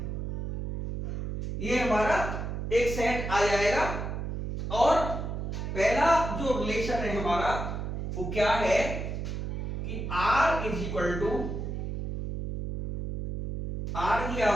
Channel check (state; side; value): noise; right; hum, 4 dB below the sound